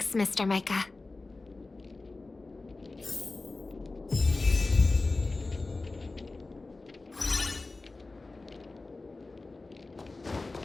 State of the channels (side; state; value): right; quieter; 3.4 dB